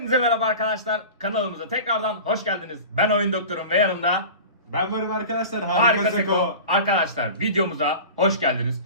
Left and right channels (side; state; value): both; inverted; correlation -0.35